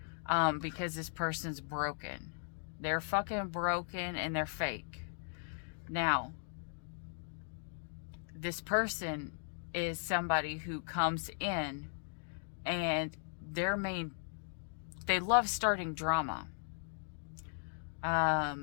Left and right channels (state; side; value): silent; right; digital silence